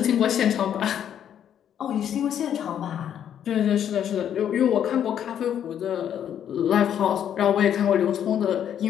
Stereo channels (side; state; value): right; quieter; 9.6 dB